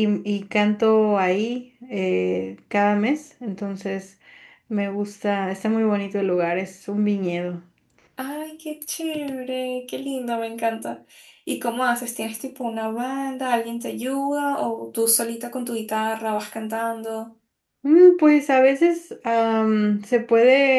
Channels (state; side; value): identical; both; correlation 1.00